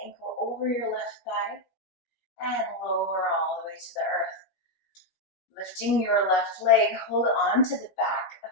ankle over your left thigh, and lower all the way to the earth. Lifting your left leg, hold on to the back of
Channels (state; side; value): late; right; 17 ms